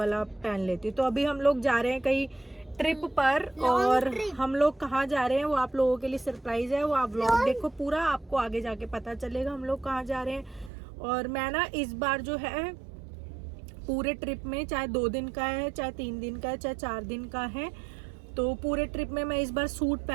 पहन लेती हूँ। तो अभी हम लोग जा रहे हैं कहीं ट्रिप पर, और हम लोग कहाँ जा रहे हैं वो आप लोगों के लिए सरप्राइज है। वो आप व्लॉग देखो पूरा, आपको आगे जाके पता चलेगा हम लोग कहाँ जा रहे हैं। और मैं ना इस बार जो है पूरे ट्रिप में, चाहे 2 दिन का है, चाहे 3 दिन का है, चाहे 4 दिन का है, तो पूरे ट्रिप में मैं इस बार सूट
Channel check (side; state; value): left; drops out; at 10.7 s